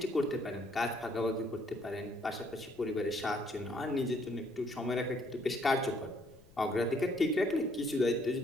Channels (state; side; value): noise; left; rumble, 25 dB below the sound